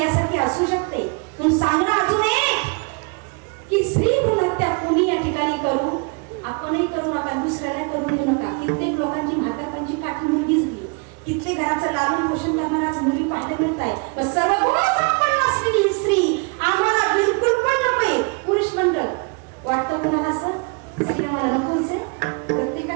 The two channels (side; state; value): left; quieter; 33.5 dB